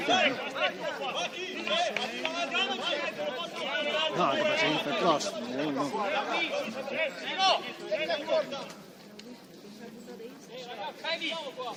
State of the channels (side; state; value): both; identical; correlation 1.00